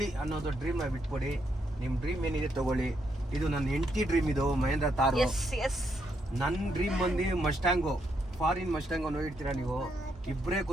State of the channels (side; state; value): both; normal; correlation 0.77